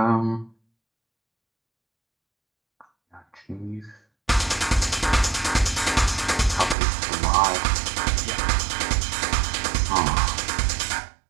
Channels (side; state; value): left; drops out; at 6.8 s